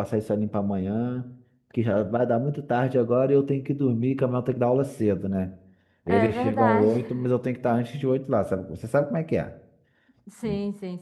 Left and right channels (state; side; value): identical; both; correlation 1.00